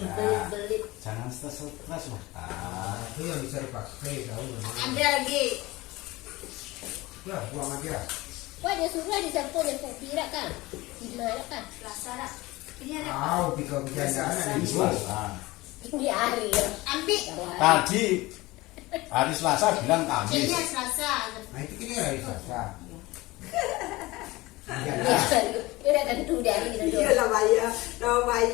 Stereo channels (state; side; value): quieter; right; 20.5 dB